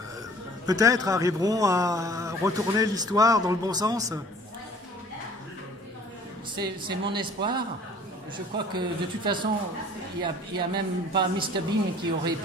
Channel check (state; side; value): normal; both; correlation 0.51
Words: peut-être arriveront à retourner l'histoire dans le bon sens? C'est mon espoir. Je crois que de toute façon, il n'y a même pas Mr Bean qui aurait